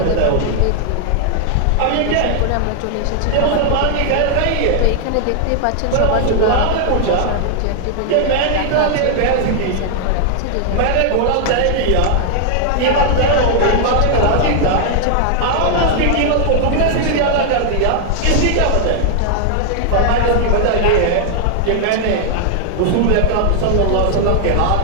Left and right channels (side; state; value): both; different; correlation -0.01